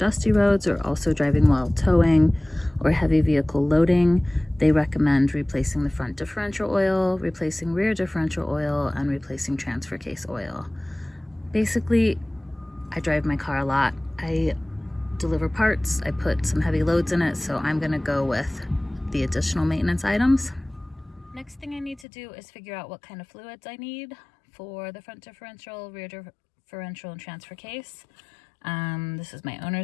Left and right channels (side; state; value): right; drops out; at 22.1 s